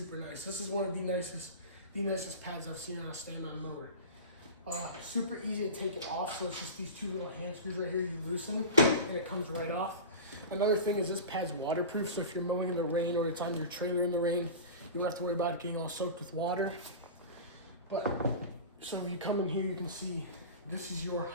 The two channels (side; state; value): both; inverted; correlation -0.30